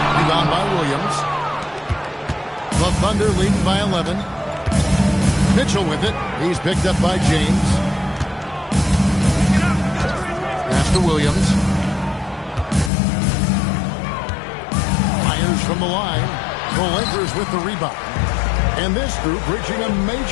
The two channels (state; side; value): drops out; right; at 12.9 s